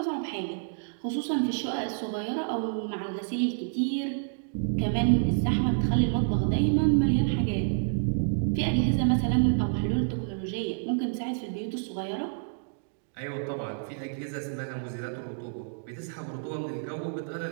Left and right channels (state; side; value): silent; left; digital silence